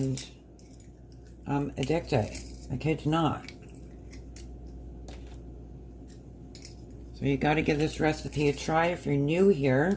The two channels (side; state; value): both; identical; correlation 1.00